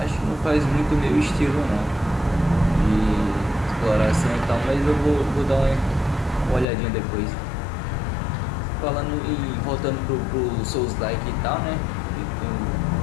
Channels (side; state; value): right; drops out; at 6.7 s